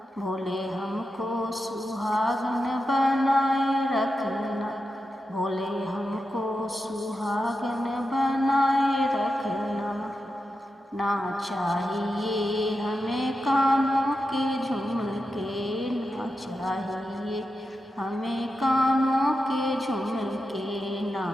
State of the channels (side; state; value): both; normal; correlation 0.89